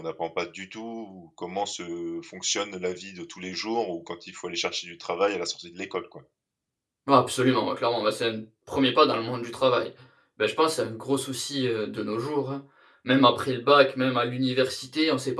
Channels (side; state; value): both; identical; correlation 1.00